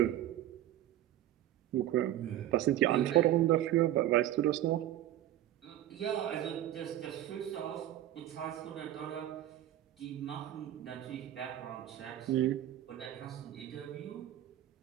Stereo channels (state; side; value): quieter; left; 13.1 dB